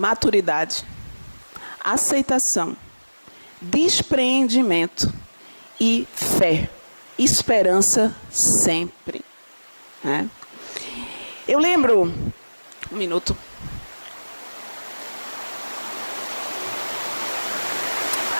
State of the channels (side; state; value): both; inverted; correlation -1.00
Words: aceitação, despreendimento e fé, esperança sempre. Né? Eu lembro, um minuto,